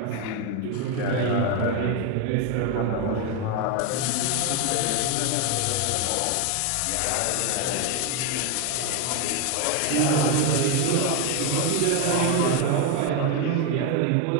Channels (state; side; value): different; both; correlation 0.02